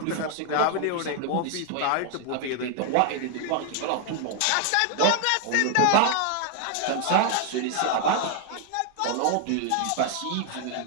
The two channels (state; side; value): different; both; correlation 0.00